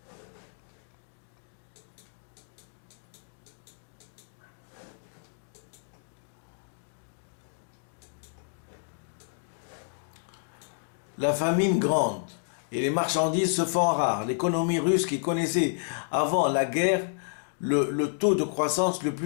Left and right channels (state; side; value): silent; right; digital silence